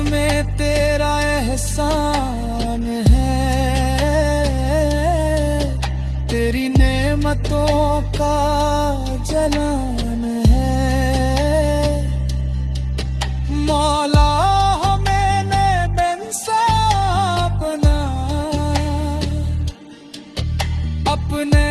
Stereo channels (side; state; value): both; identical; correlation 1.00